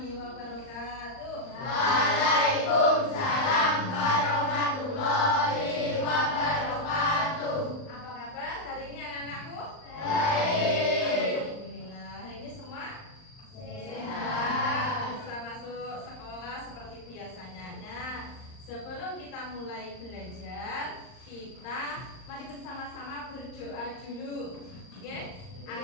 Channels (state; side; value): late; right; 39 ms